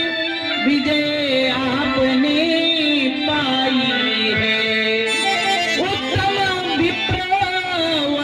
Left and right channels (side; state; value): both; identical; correlation 1.00